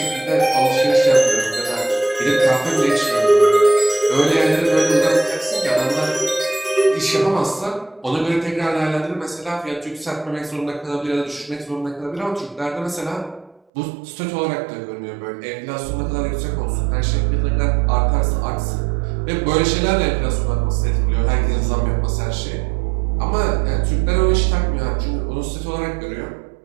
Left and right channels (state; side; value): drops out; left; at 13.6 s